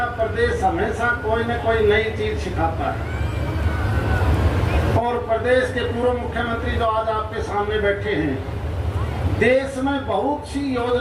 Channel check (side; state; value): both; identical; correlation 1.00